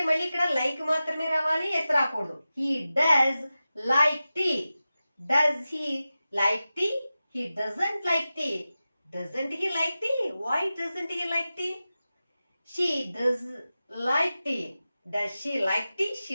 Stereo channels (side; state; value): both; inverted; correlation -0.94